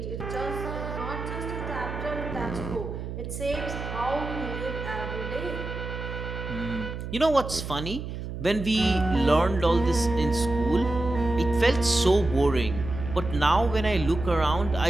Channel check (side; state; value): right; noise; hum, 7 dB below the sound